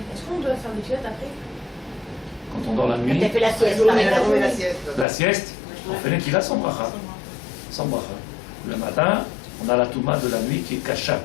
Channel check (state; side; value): drops out; right; at 5.1 s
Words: est-ce qu'on doit faire des filettes après? Quand on dort la nuit, Tu as fait la sieste. la sieste, on fait Netilat sans bracha. Sans bracha. Le matin, on a la Touma de la nuit qui est kasha,